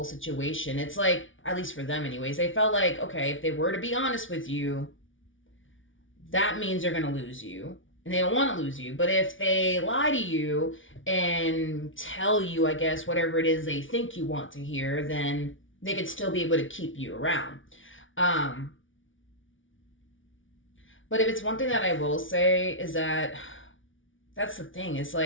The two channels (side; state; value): right; late; 0.57 ms